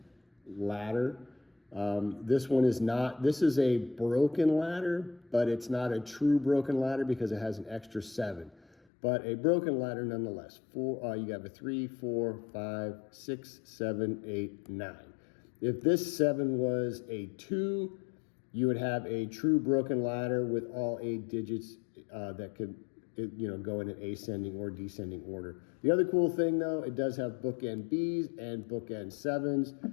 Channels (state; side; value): drops out; right; at 8.8 s